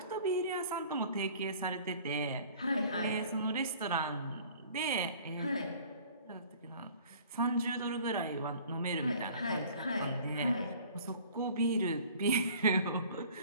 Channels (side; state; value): both; inverted; correlation -0.49